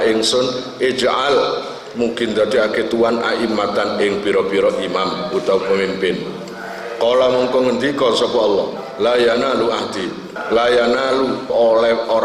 ingsun ij'al mungkin dadekake tuan aimatan ing pira-pira imam utawa pemimpin. Kala mongko ngendika sapa Allah, la yanalu ahdi, la yanalu oleh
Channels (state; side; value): identical; both; correlation 1.00